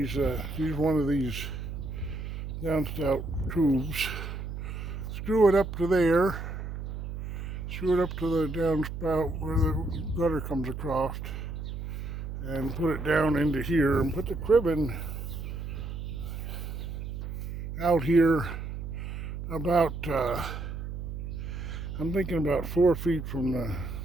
use one of these downspout tubes, screw it up to there, screw it up to the downspout where the gutter comes across, and put it down into here and put the cribbing out here about, I'm thinking about 4 feet from the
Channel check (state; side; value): noise; right; hum, 6 dB below the sound